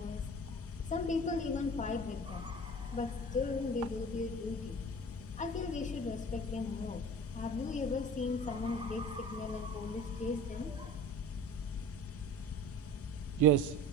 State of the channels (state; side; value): normal; both; correlation 0.40